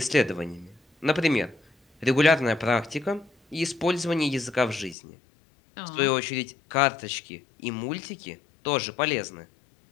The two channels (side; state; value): right; drops out; at 5.0 s